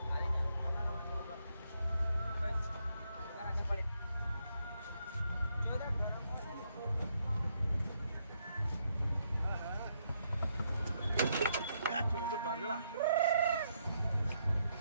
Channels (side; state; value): both; inverted; correlation -0.76